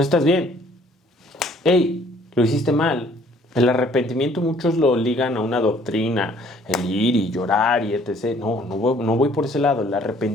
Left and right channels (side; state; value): both; normal; correlation 0.59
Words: estás bien. Hey, lo hiciste mal. El arrepentimiento muchos lo ligan a una doctrina, el ir y llorar y etc. No voy por ese lado. El